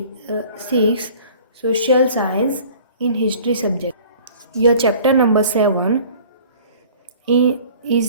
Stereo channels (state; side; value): inverted; both; correlation -0.48